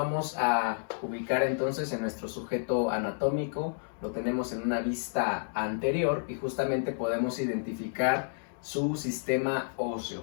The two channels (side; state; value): right; silent; digital silence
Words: a ubicar entonces en nuestro sujeto anatómico. Lo tenemos en una vista anterior y justamente podemos identificar su sistema óseo.